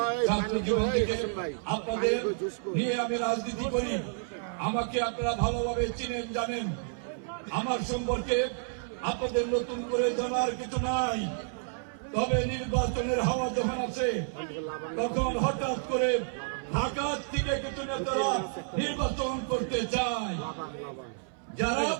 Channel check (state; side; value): silent; left; 58 dB below the other